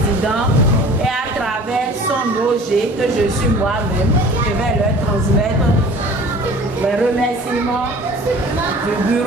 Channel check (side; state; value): both; normal; correlation 0.46